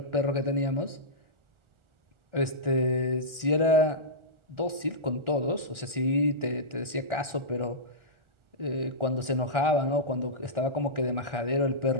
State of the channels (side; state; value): left; late; 1.4 ms